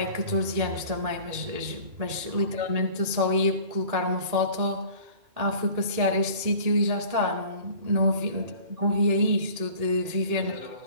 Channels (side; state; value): left; late; 1.8 ms